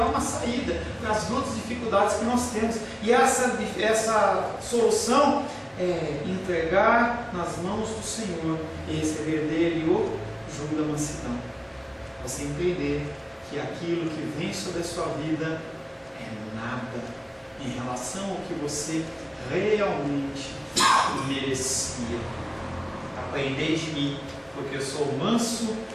uma saída para as lutas e dificuldades que nós temos. E essa solução é entregar nas mãos do Senhor e receber dele o jugo da mansidão. Você entender que aquilo que vem sobre a sua vida é nada em relação ao que você realmente merecia. Aprendei de mim, porque eu sou manso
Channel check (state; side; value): identical; both; correlation 1.00